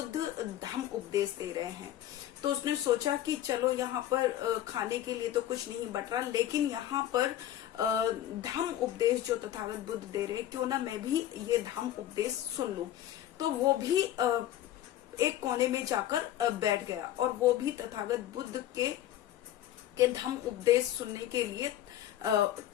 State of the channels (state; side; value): quieter; right; 12.6 dB